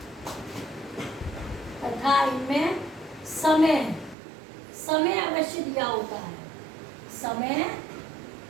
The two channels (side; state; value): left; drops out; at 4.2 s